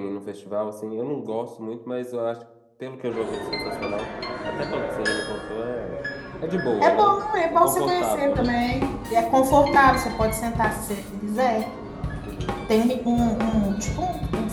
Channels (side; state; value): both; identical; correlation 1.00